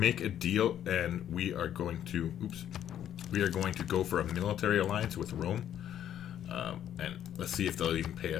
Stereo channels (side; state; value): right; quieter; 10.5 dB